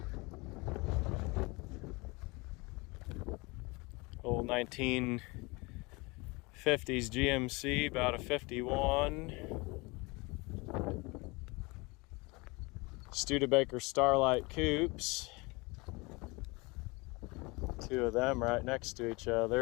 old 1950s GMC, about a 51. Studebaker Starlight Coupes. Two of them right next to each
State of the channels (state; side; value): quieter; right; 25.9 dB